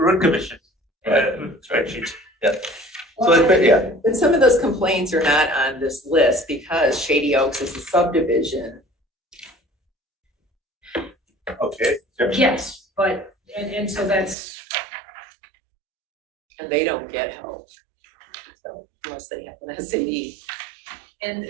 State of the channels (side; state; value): left; drops out; at 14.4 s